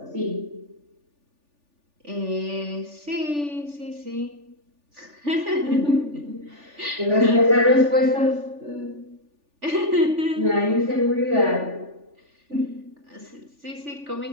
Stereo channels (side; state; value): left; late; 3.4 ms